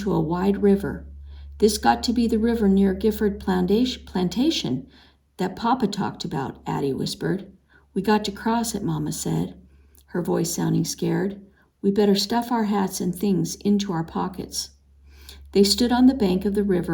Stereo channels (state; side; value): identical; both; correlation 1.00